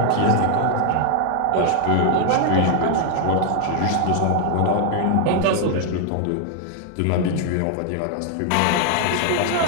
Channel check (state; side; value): different; both; correlation 0.00